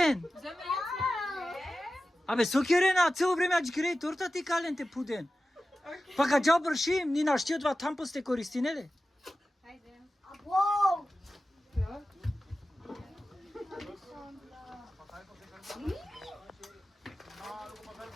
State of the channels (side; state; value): both; normal; correlation 0.94